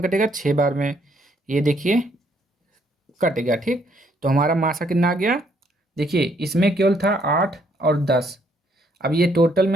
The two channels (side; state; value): both; normal; correlation 0.69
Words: कटेगा, 6 बार में, ये देखिए कट गया, ठीक। तो हमारा मासा कितना आ गया, देखिए इसमें केवल था 8 और 10। अब ये टोटल